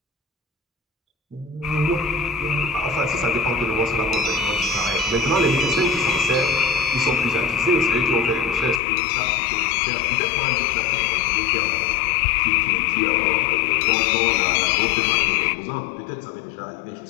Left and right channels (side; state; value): right; drops out; at 8.8 s